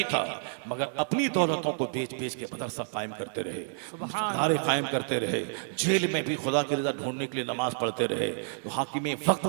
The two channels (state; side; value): silent; left; digital silence